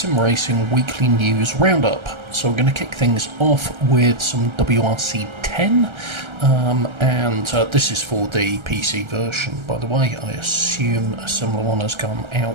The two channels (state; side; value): late; left; 1.3 ms